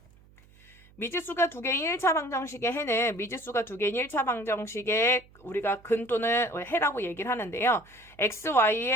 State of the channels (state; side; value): noise; right; hum, 27 dB below the sound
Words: 미지수가 2개인 1차 방정식의 해는 미지수가 2개인 1차 방정식의 우리가 근 또는 해라고 얘기를 하는데요.